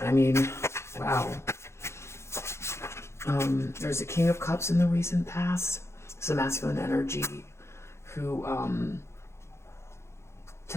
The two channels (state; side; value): late; right; 0.13 ms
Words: mean, wow. There's a King of Cups in the recent past. It's a masculine energy who